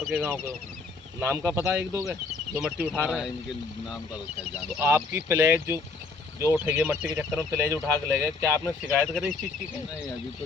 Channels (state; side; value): quieter; right; 4.1 dB